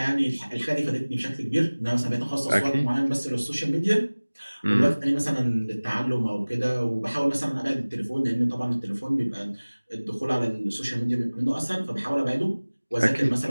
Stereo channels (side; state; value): both; inverted; correlation -1.00